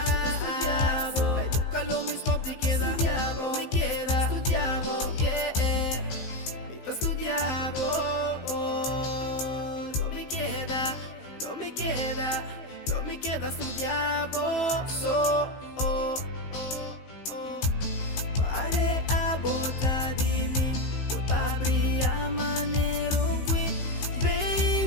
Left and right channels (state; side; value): late; right; 16 ms